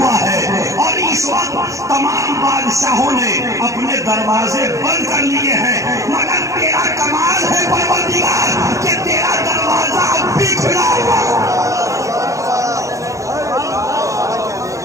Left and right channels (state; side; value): late; left; 0.15 ms